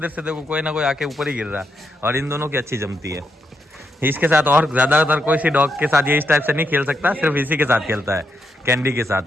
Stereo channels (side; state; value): both; normal; correlation 0.81